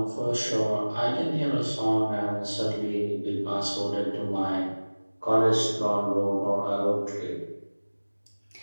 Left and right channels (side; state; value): both; inverted; correlation -1.00